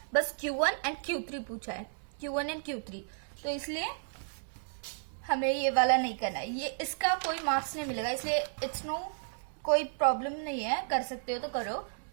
बस Q1 एंड Q3 पूछा है, Q1 एंड Q3, तो इसलिए हमें ये वाला नहीं करना है, ये इसका कोई मार्क्स नहीं मिलेगा, इसलिए इट्स नो कोई प्रॉब्लम नहीं है, कर सकते हो तो करो,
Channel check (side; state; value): left; silent; digital silence